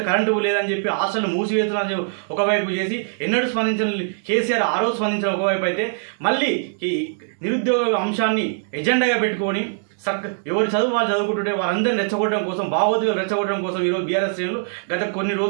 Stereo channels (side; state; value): left; silent; digital silence